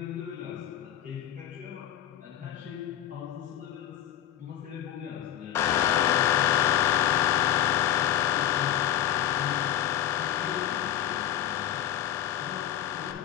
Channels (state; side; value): quieter; right; 11.4 dB